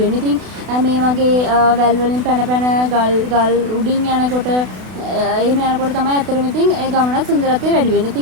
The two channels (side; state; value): left; late; 32 ms